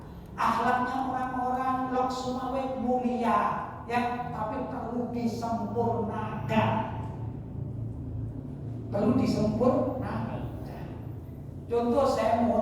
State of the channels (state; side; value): identical; both; correlation 1.00